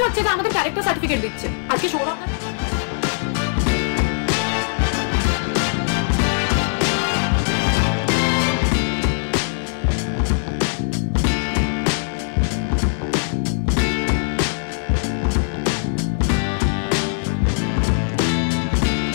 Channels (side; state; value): right; silent; digital silence